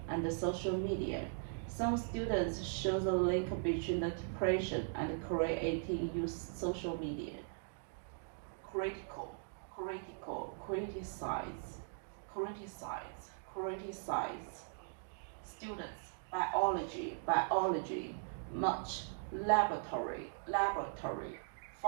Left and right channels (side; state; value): left; silent; digital silence